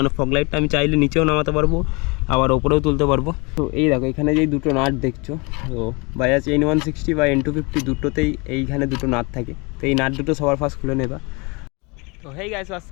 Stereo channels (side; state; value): right; quieter; 28.3 dB